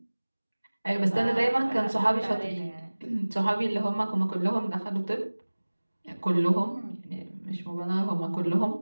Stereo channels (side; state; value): both; inverted; correlation -1.00